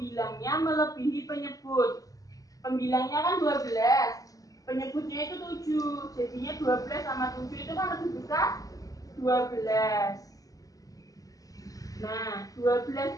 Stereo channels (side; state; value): right; late; 0.17 ms